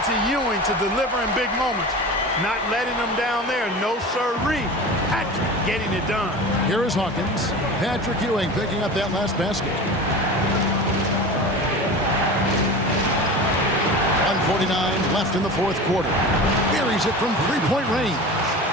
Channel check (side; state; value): both; normal; correlation 0.33